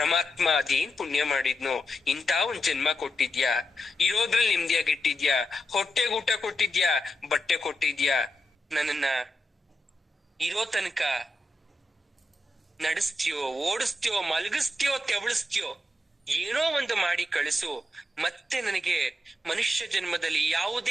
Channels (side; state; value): both; normal; correlation 0.86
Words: ಅದೇನ್ ಪುಣ್ಯ ಮಾಡಿದ್ನೋ, ಇಂಥ ಒಂದ್ ಜನ್ಮ ಕೊಟ್ಟಿದ್ಯಾ, ಇರೋದ್ರಲ್ಲಿ ನೆಮ್ಮದಿಯಾಗಿಟ್ಟಿದ್ಯಾ, ಹೊಟ್ಟೆಗೆ ಊಟ ಕೊಟ್ಟಿದ್ಯಾ, ಬಟ್ಟೆ ಕೊಟ್ಟಿದ್ಯಾ, ನನ್ನನ್ನ ಇರೋ ತನಕ ನಡೆಸ್ತೀಯೋ, ಓಡಿಸ್ತೀಯೋ, ಮಲಗಿಸ್ತೀಯೋ, ತೆವಳಿಸ್ತೀಯೋ, ಏನೋ ಒಂದು ಮಾಡಿ ಕಳಿಸು. ಮತ್ತೆ ನನಗೆ ಮನುಷ್ಯ ಜನ್ಮದಲ್ಲಿ